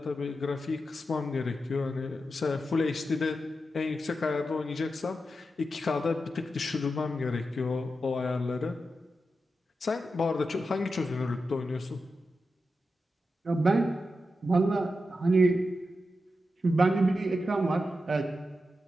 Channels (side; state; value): both; normal; correlation 0.89